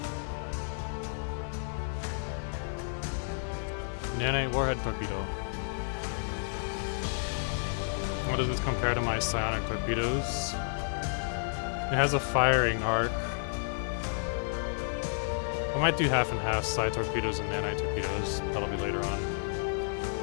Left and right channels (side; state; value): right; silent; 57 dB below the other